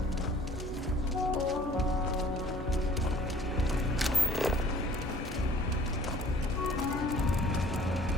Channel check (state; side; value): normal; both; correlation 0.52